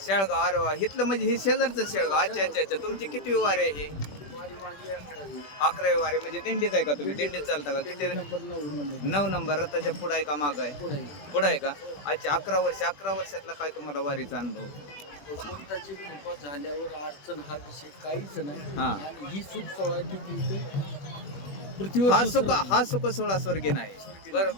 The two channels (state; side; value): late; right; 20 ms